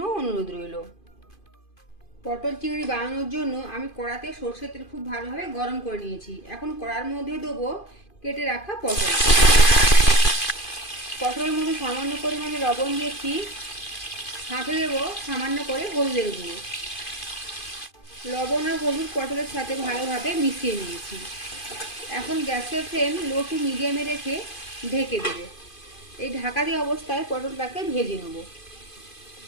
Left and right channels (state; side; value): late; right; 2.5 ms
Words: অনুরোধ রইল। পটল চিংড়ি বানানোর জন্য আমি কড়াতে সরষের তেল খুব ভালোভাবে গরম করে নিয়েছি। এখন কড়ার মধ্যে দেবো কেটে রাখা পটল। পটলের মধ্যে সামান্য পরিমাণে লবণ দিয়েছি, সাথে দেবো সামান্য করে হলুদের গুঁড়ো। লবণ আর হলুদ পটলের সাথে ভালোভাবে মিশিয়ে নিয়েছি। এখন গ্যাসের ফ্লেম লো টু মিডিয়ামে রেখে ঢেকে দেব। এই ঢাকা দিয়ে অবস্থায় পটলটাকে ভেজে নেব।